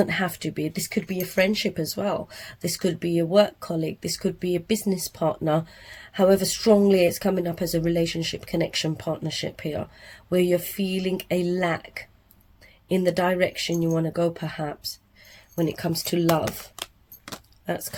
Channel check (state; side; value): identical; both; correlation 1.00